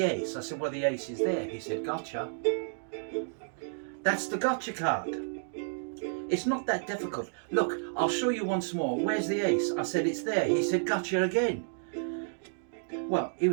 ace? I said, well, the ace is there. He said, gotcha. That's the gotcha card. It's not that difficult. Look, I'll show you once more. Where's the ace? I said, it's there. He said, gotcha again. Well, he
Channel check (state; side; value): silent; left; digital silence